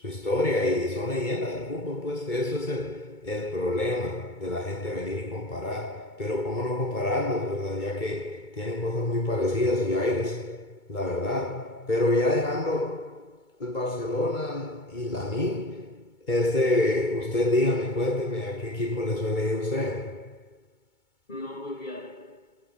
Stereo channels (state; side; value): late; right; 2.2 ms